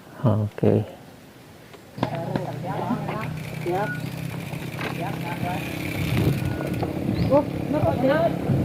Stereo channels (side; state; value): both; identical; correlation 1.00